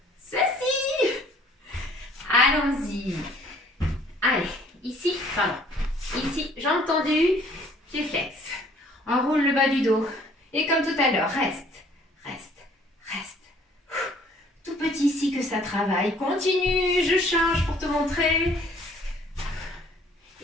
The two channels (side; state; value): both; normal; correlation 0.57